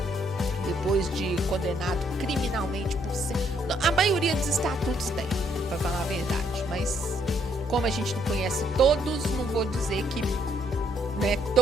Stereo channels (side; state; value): both; normal; correlation 0.70